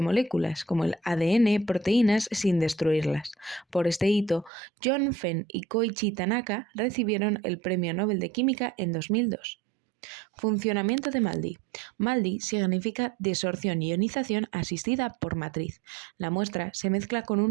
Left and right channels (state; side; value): drops out; left; at 4.5 s